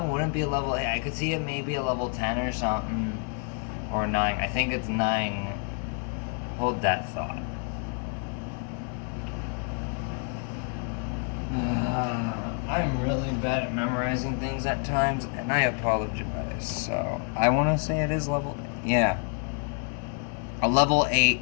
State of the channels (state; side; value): quieter; right; 39.3 dB